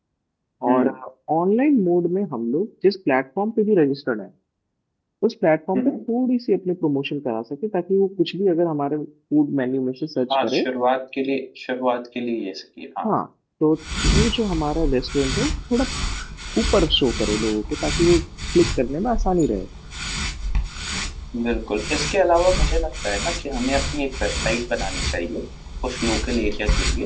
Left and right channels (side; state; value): both; identical; correlation 1.00